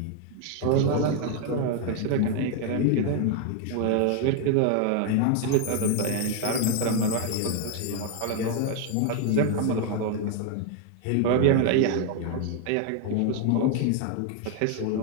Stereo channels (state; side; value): different; both; correlation 0.01